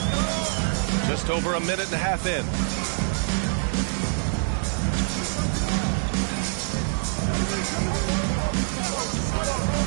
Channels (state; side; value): silent; left; digital silence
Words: Just over a minute and a half in.